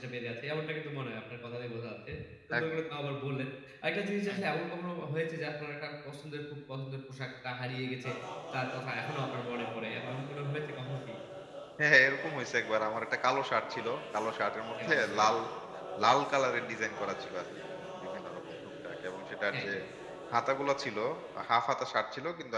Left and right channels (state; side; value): identical; both; correlation 1.00